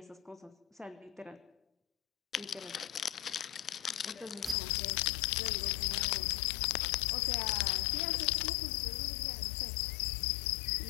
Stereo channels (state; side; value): drops out; right; at 4.5 s